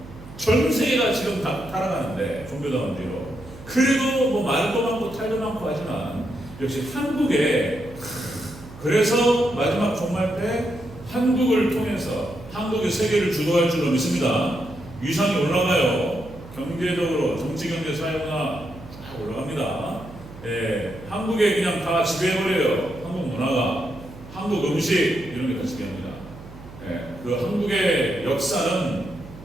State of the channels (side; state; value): right; noise; hum, 17 dB below the sound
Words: 전 세계가 지금 다 타락하는데 종교다원주의로. 그래도 뭐 말도 많고 탈도 많고 하지만 역시 한국에 그래서 마지막 종말 때 한국을 통해서 한국이 세계를 주도할 줄로 믿습니다. 위상이 올라가요. 경제적으로 정치, 경제, 사회문화 쫙 올라갑니다. 한국에 그냥 다 지배해버려요. 한국 문화가, 한국 음식 이런 게 다 지배합니다. 그 한국의 역사는